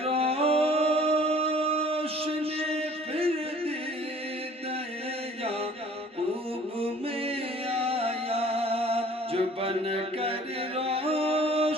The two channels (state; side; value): normal; both; correlation 0.51